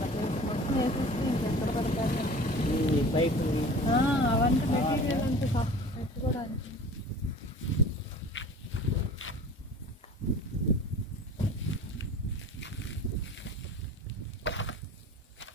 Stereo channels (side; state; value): both; normal; correlation 0.41